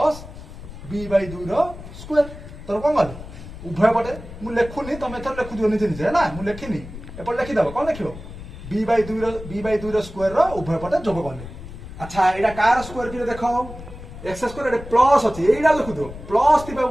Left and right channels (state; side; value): noise; left; rumble, 13 dB below the sound